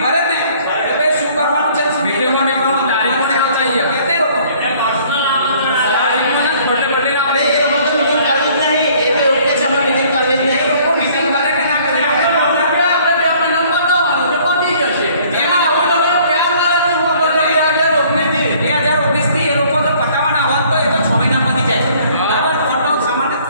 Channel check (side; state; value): both; inverted; correlation -0.57